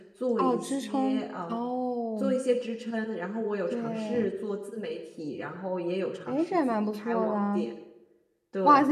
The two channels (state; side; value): identical; both; correlation 1.00